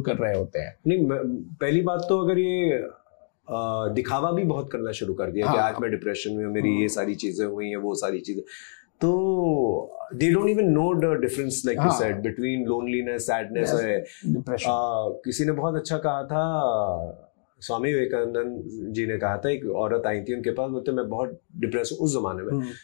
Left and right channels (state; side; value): silent; right; digital silence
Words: कर रहे होते हैं। नहीं, पहली बात तो अगर ये दिखावा भी बहुत करना शुरू कर दिया कि आज मैं डिप्रेशन में हूं, मेरी ये सारी चीजें हुई हैं, वो सारी चीजें, तो they don't even know the difference, like you said, between loneliness, sadness और depression। किसी ने बहुत अच्छा कहा था, स्वामी विवेकानंद जी ने कहा था, एक औरत आई थी उनके पास, बोलते मैं बहुत डिप्रेस हूँ उस जमाने में।